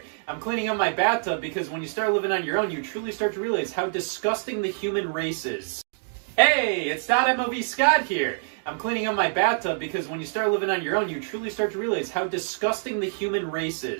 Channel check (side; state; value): left; silent; digital silence